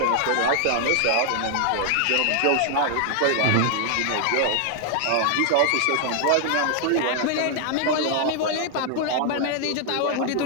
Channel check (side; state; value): both; different; correlation 0.00